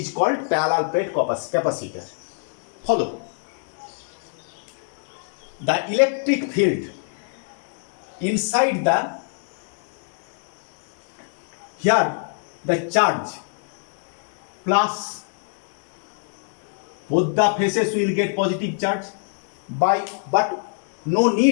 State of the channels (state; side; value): silent; right; digital silence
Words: called parallel plate capacitor. Follow. The electric field inside the charge plus both the faces will get positive charge but no